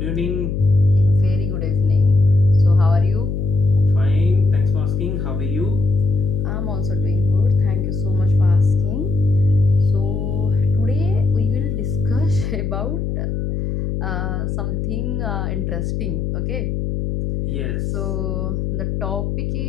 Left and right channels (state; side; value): noise; left; hum, 2 dB below the sound